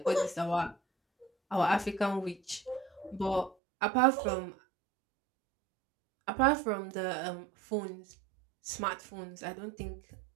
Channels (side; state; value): left; drops out; at 3.6 s